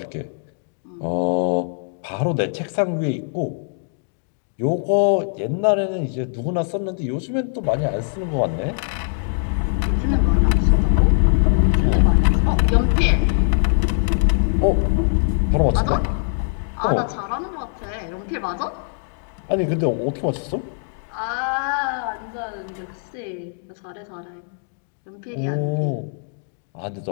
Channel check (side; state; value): right; silent; digital silence